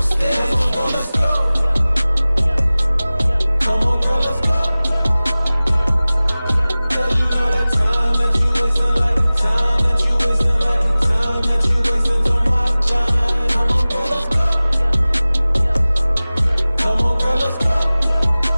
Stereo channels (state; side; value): inverted; both; correlation -0.98